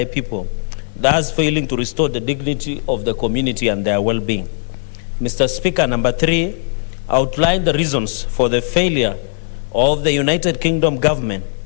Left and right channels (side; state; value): right; silent; digital silence